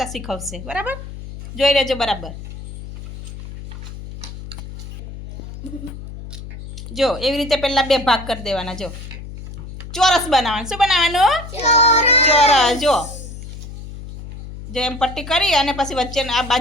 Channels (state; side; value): noise; left; hum, 12 dB below the sound